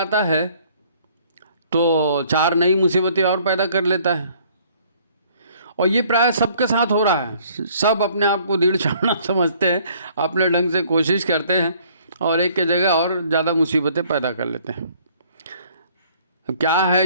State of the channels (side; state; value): both; inverted; correlation -0.59